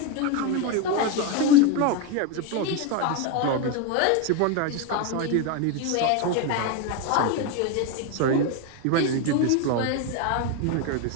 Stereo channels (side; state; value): both; different; correlation 0.02